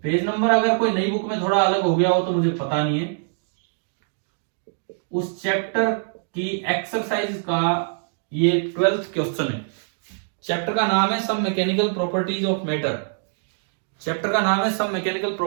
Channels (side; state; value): left; silent; digital silence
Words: पेज नंबर, अगर कोई नई बुक में थोड़ा अलग हो गया हो तो मुझे पता नहीं है। उस चैप्टर की एक्सरसाइज का ये 12th क्वेश्चन है। चैप्टर का नाम है some mechanical properties of matter. Chapter का नाम है some mechanical